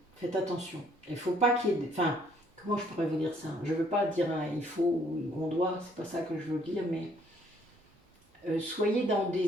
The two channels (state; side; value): normal; both; correlation 0.64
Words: Faites attention. Il faut pas qu'il y ait... Enfin, comment je pourrais vous dire ça? Je veux pas dire il faut ou on doit, c'est pas ça que je veux dire, mais soyez dans